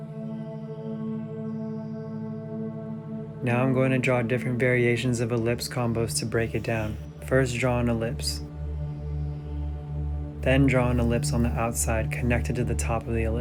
Now I'm going to draw different variations of ellipse combos to break it down. First, draw an ellipse. Then draw an ellipse on the outside connected to the top of the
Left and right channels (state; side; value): identical; both; correlation 1.00